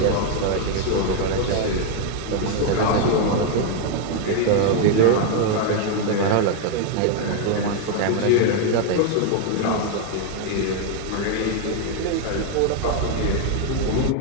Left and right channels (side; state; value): both; different; correlation 0.00